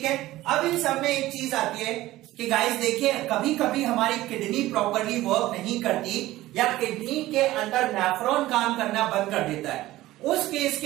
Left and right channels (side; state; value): left; quieter; 16.5 dB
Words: है, अब इन सब में एक चीज आती है कि गाइस देखिए, कभी कभी हमारी किडनी प्रॉपरली वर्क नहीं करती या किडनी के अंदर नेफ्रॉन काम करना बंद कर देता है। उस केस